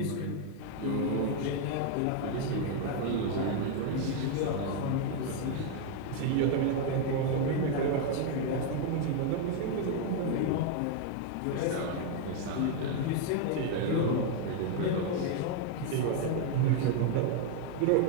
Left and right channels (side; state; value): both; different; correlation 0.01